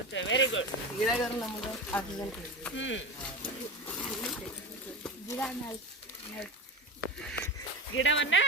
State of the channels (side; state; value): both; normal; correlation 0.25